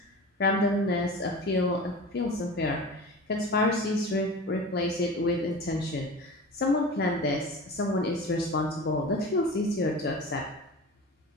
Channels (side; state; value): both; normal; correlation 0.34